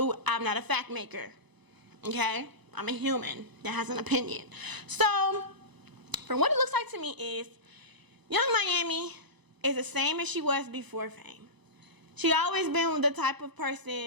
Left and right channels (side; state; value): left; late; 1.0 ms